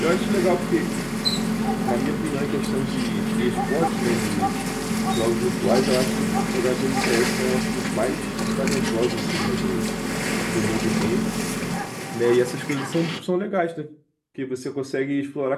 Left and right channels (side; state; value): both; identical; correlation 1.00